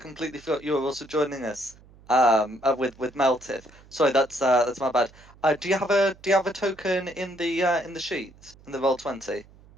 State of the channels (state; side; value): noise; right; hum, 25 dB below the sound